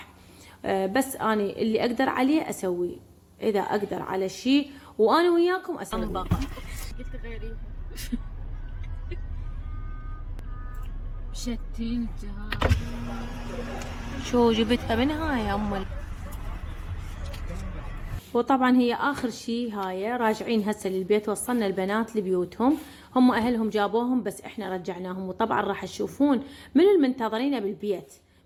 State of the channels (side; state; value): both; identical; correlation 1.00